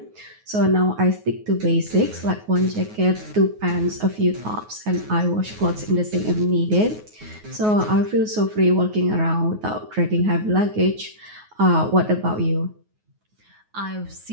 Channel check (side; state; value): left; late; 9.4 ms